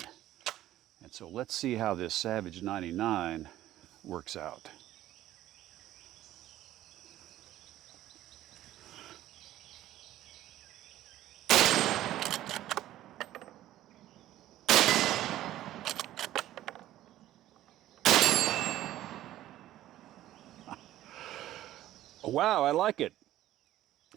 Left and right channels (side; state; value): left; quieter; 13.9 dB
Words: And so let's see how this Savage 99 works out. Wow, I like it.